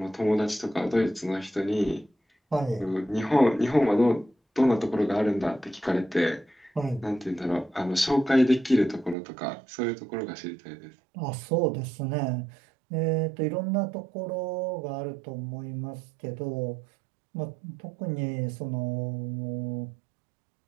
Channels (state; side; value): drops out; left; at 9.2 s